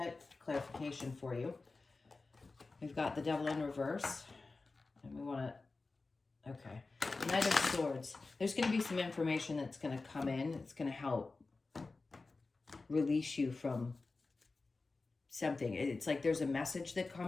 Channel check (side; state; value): right; quieter; 3.7 dB